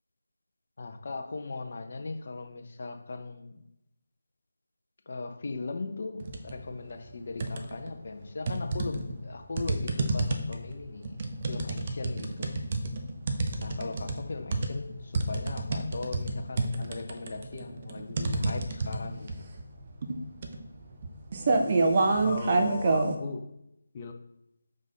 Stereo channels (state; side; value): inverted; both; correlation -0.85